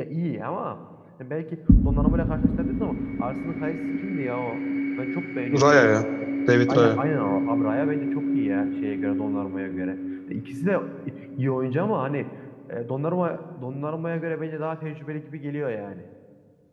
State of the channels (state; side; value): identical; both; correlation 1.00